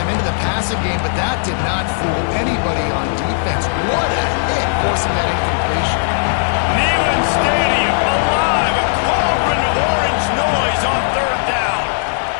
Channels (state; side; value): silent; right; digital silence